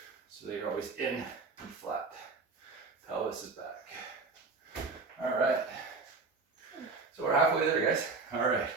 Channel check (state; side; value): quieter; left; 4.1 dB